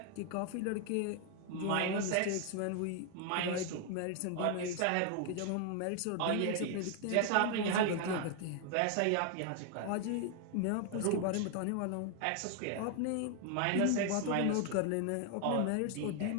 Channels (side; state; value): both; different; correlation 0.00